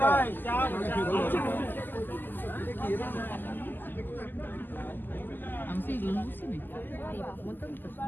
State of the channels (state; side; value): late; right; 0.090 ms